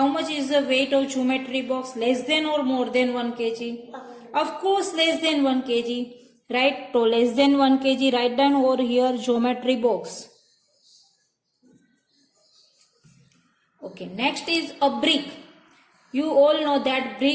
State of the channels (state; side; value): identical; both; correlation 1.00